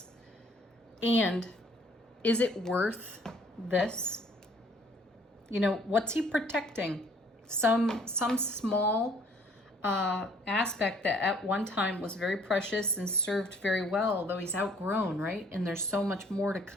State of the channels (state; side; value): normal; both; correlation 0.59